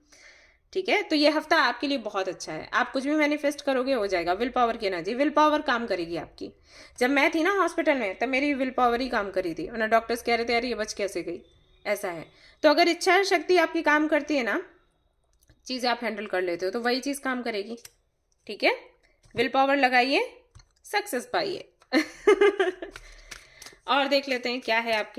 ठीक है। तो ये हफ्ता आपके लिए बहुत अच्छा है, आप कुछ भी मैनिफेस्ट करोगे हो जाएगा। विल पावर की एनर्जी, विल पावर काम करेगी आपकी। जब मैं थी ना हॉस्पिटल में तब मेरी विल पावर ही काम करी थी, वरना डॉक्टर्स कह रहे थे यार ये बच कैसे गई, ऐसा है। तो अगर इच्छा शक्ति आपकी काम करती है ना, चीजें आप हैंडल कर लेते हो, तो वही चीज काम करेगी, ठीक है। विल पावर लगाइए, सक्सेस पाइए और देख लेते हैं क्या है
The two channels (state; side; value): identical; both; correlation 1.00